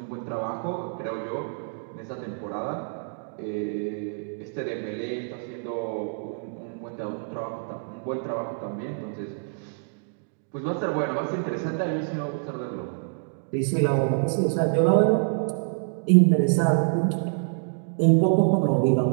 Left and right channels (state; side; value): silent; left; digital silence